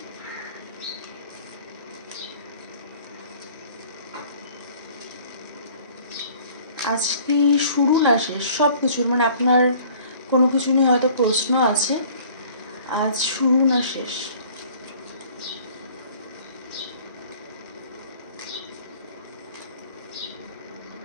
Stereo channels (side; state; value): both; inverted; correlation -0.52